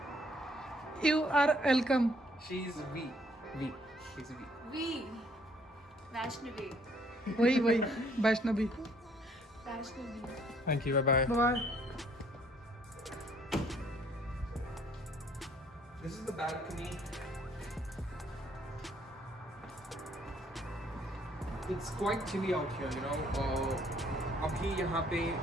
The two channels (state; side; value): normal; both; correlation 0.64